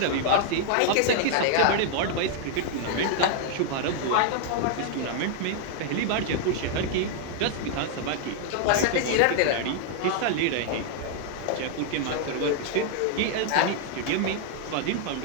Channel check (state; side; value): different; both; correlation -0.01